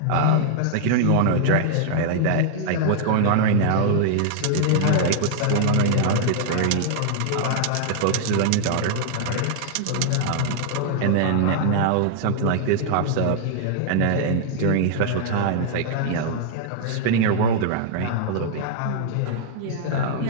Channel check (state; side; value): different; both; correlation -0.01